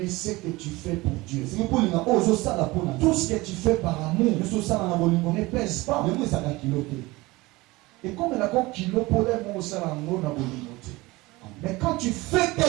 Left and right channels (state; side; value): quieter; left; 21.3 dB